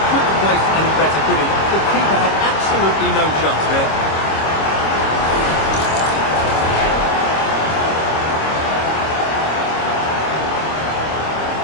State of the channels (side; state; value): right; late; 26 ms